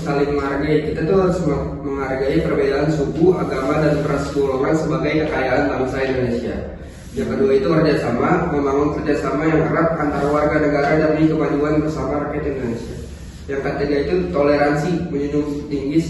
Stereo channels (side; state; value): both; identical; correlation 1.00